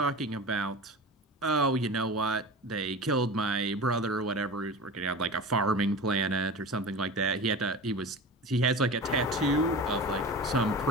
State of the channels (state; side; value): normal; both; correlation 0.32